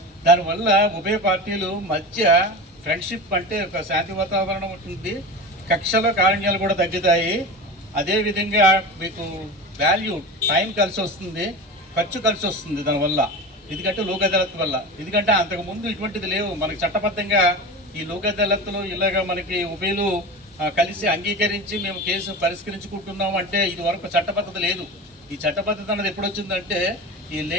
దానివల్ల ఉభయ పార్టీలు మధ్య ఫ్రెండ్షిప్ అంటే ఒక శాంతి వాతావరణం ఉంటుంది. కక్షల కారణ్యాలు కూడా తగ్గుతాయి. అదేవిధంగా మీకు వాల్యూ టైం కలిసి వస్తుంది, ఖర్చు కలిసి వస్తుంది దానివల్ల. ఎందుకంటే లోక్ అదాలత్ వల్ల ఎందుకంటే అంతకుముందు ఇటువంటిది లేవు. మనకి చట్టబద్ధంగా ఈ లోక్ అదాలత్లో ఇలాగా మనకి ఉభయలు కలిసి అంగీకరించి మేము కేసు పరిష్కరించుకుంటున్నాం అంటే ఇది వరకు చట్టబద్ధత లేదు. ఈ చట్టబద్ధత అన్నది ఎప్పుడు వచ్చిందంటే ఈ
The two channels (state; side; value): normal; both; correlation 0.29